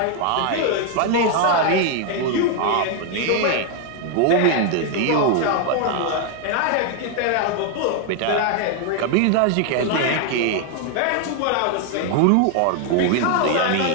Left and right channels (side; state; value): both; different; correlation 0.01